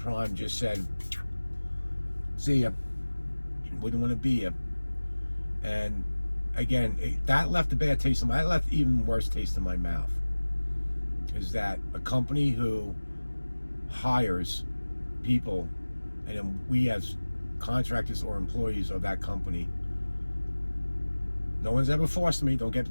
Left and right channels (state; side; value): inverted; both; correlation -1.00